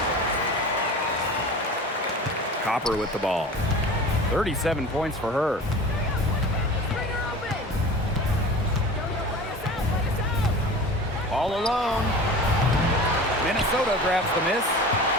Copper with the ball. 37 points for her. All alone. Minnesota grabs the miss.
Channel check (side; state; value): both; normal; correlation 0.37